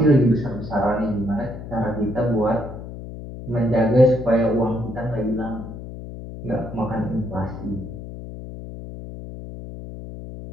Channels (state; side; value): noise; left; hum, 11 dB below the sound